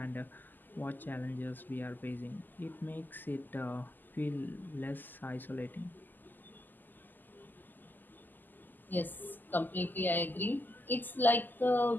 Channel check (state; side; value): late; right; 0.088 ms